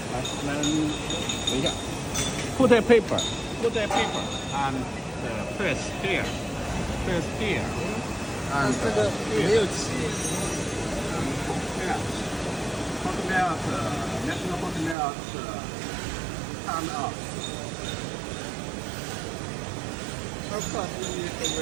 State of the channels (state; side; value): drops out; left; at 15.0 s